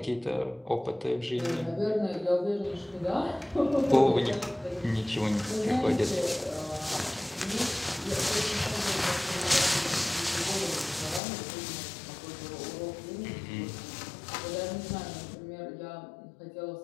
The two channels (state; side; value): drops out; right; at 11.2 s